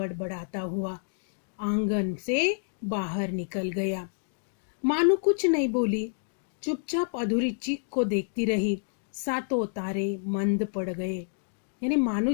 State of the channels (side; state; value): right; silent; digital silence